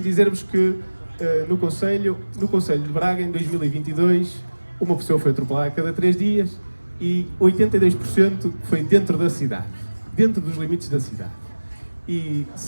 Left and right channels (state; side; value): inverted; both; correlation -1.00